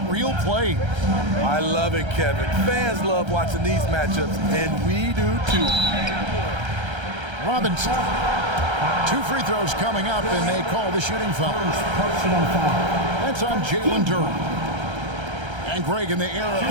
reel plays. I love it, Kevin. Fans love watching these matchups, and we do too. Robinson. 2 free throws coming up, and they call the shooting foul. That's on Jalen Duren. And Greg, in the era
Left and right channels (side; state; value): left; late; 1.3 ms